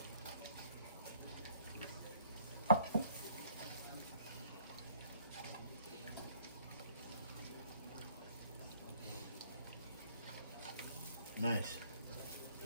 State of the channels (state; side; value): inverted; both; correlation -0.62